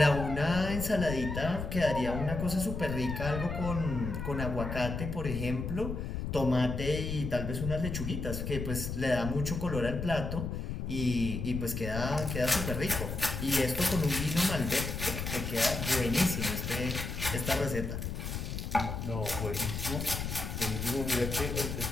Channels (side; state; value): left; noise; rumble, 4 dB below the sound